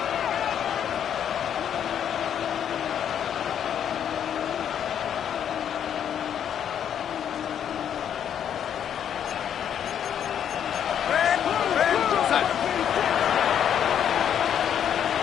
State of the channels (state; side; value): quieter; right; 9.1 dB